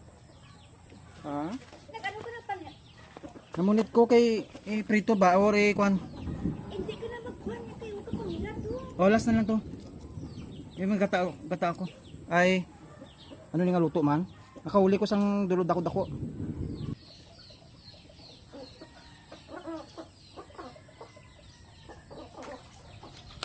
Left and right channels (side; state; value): both; identical; correlation 1.00